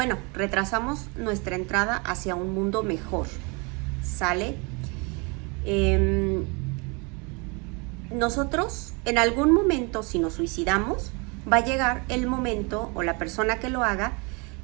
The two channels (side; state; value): left; quieter; 30.5 dB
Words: retrasamos nuestra entrada hacia un mundo mejor, ¿sale? Nosotros, en algún momento, si nos suicidamos, va a llegar el momento, o la persona que lo haga,